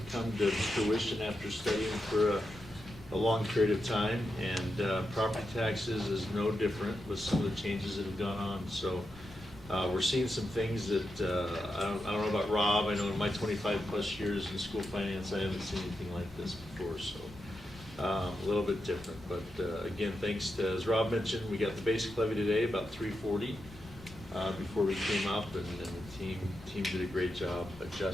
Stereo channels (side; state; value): left; noise; rumble, 20 dB below the sound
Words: come to fruition after studying for a long period of time, and property taxes is no different with some of the changes that have gone on. So we're seeing some things that I don't know about Rob. I know in my 25 plus years in school finance, I haven't seen anything like this before. So a little bit different, but again, thanks to, as Rob mentioned, we got the basic levy today about 340 before we came up, and the team did a great job